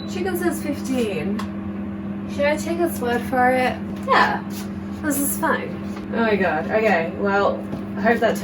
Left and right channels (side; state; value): both; identical; correlation 1.00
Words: Chicken says 15. Should I take its word for it? Yeah, this is fine. Oh my god. Okay, well, I hope that